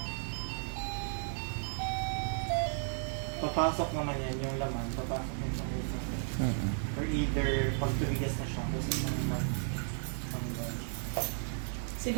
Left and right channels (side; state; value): left; silent; digital silence